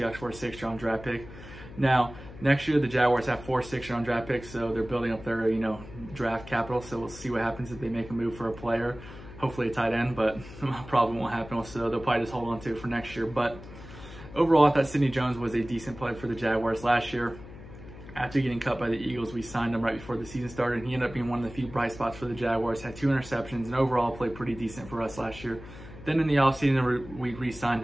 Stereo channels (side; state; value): left; noise; hum, 15 dB below the sound